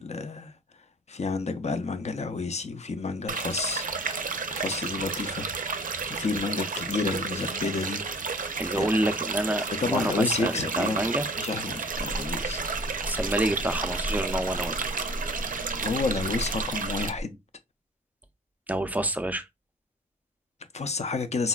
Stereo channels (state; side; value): normal; both; correlation 0.47